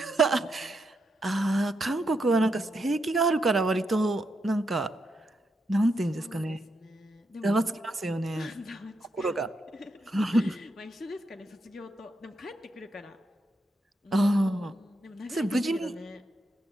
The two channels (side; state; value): both; normal; correlation 0.82